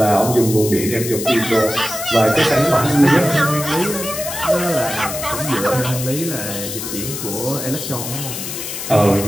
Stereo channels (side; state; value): left; noise; hiss, 7 dB below the sound